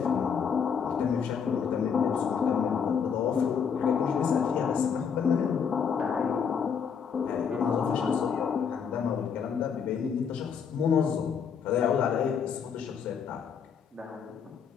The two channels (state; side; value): quieter; right; 6.8 dB